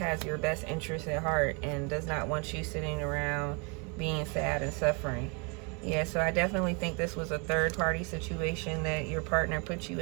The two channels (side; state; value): left; quieter; 32.4 dB